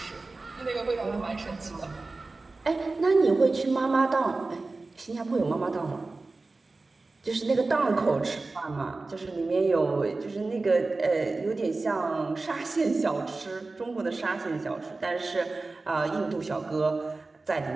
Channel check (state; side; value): quieter; left; 3.5 dB